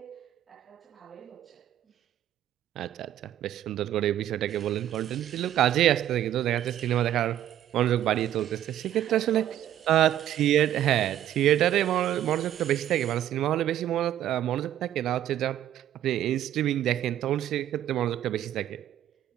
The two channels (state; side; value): quieter; left; 11.8 dB